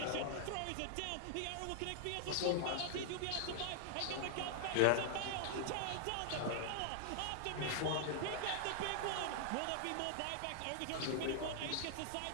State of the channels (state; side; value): different; both; correlation -0.01